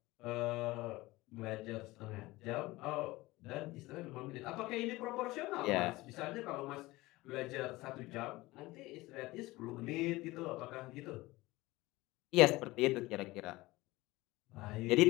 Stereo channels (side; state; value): right; quieter; 19.8 dB